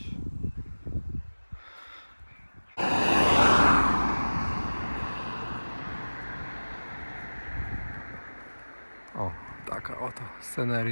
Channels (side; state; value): both; inverted; correlation -1.00